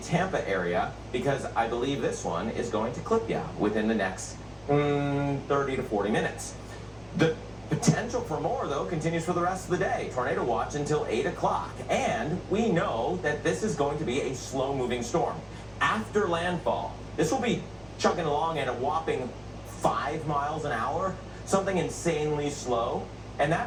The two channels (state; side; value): noise; left; rumble, 28 dB below the sound